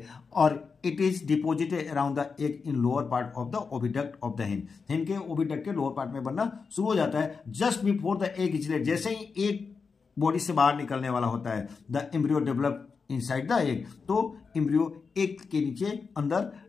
और it is deposited around the egg in lower part of the oviduct of the hen. Hen के ओविडक्ट के लोअर पार्ट में बनना शुरू हो जाता है। Just before the egg is laid, जैसे ही एग बॉडी से बाहर निकलने वाला होता है, the embryo develop inside the egg. तो एम्ब्रियो एग के नीचे अंदर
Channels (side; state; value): right; quieter; 5.1 dB